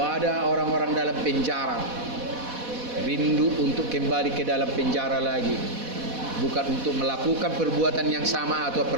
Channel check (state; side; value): late; left; 4.1 ms